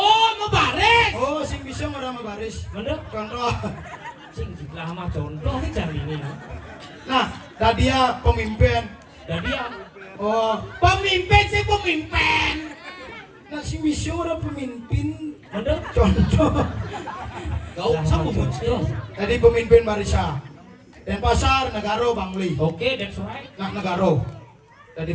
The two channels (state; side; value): identical; both; correlation 1.00